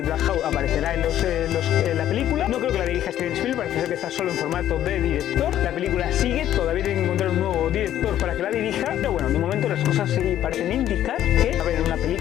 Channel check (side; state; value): right; quieter; 11.7 dB